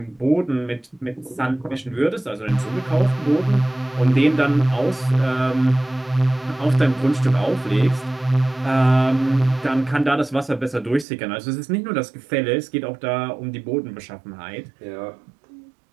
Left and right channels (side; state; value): left; drops out; at 11.1 s